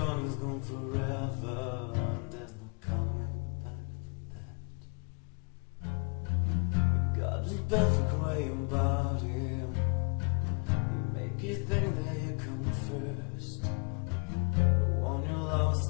forever, and there's no coming back for that. You got this perfect way about him. He make you think that you come first. But when you're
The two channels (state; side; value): quieter; right; 33.9 dB